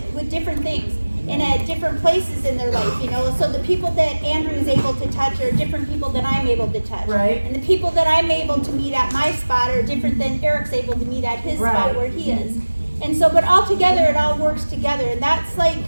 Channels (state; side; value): inverted; both; correlation -1.00